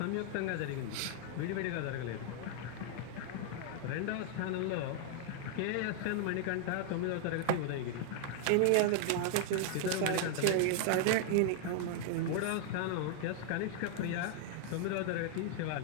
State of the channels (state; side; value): different; both; correlation 0.00